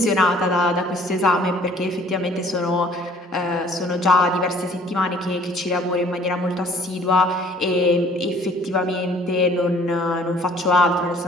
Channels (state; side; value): normal; both; correlation 0.56